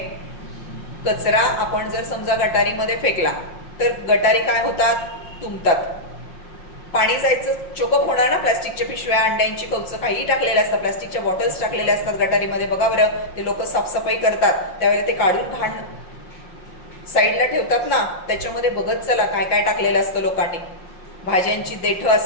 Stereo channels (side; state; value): right; late; 5.6 ms